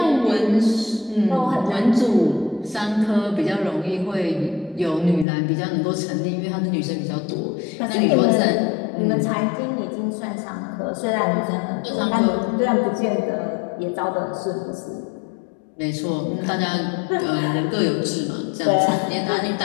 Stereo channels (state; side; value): drops out; right; at 5.2 s